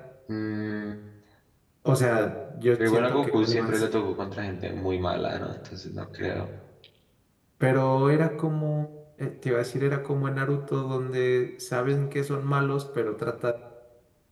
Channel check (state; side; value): identical; both; correlation 1.00